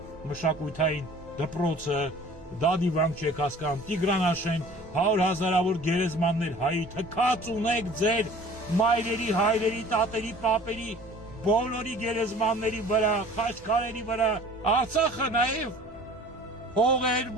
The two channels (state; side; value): normal; both; correlation 0.48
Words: մշակութային դպրոցը, դա դիվանք չեք հասկանում, Տիգրանաշեն, 100,000-ավոր գերեզմաններ հայի, թքած ունեք ձեր մայրերի, հայրերի, տատերի, պապերի, բոլորի գերեզմանների վրա, խաչքարերի վրա, Արցախը նաև հողեր,